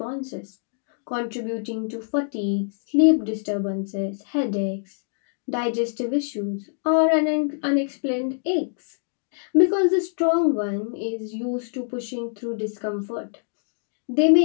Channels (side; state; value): right; silent; digital silence